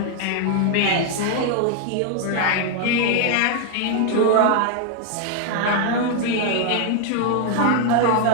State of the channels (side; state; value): both; different; correlation 0.00